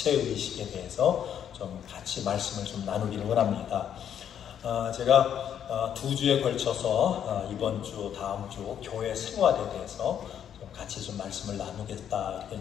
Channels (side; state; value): right; quieter; 9.2 dB